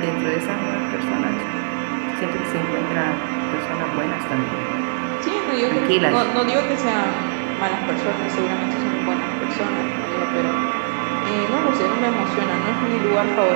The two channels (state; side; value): silent; left; digital silence